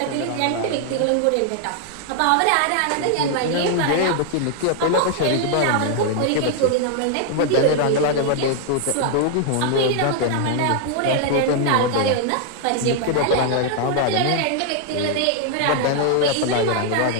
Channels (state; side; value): different; both; correlation 0.00